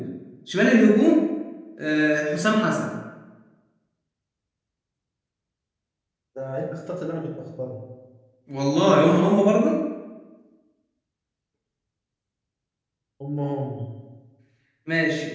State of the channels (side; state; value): both; identical; correlation 1.00